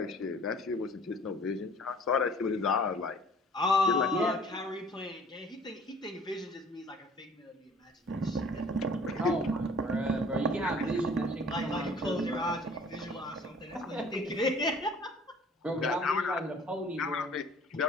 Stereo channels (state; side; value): normal; both; correlation 0.51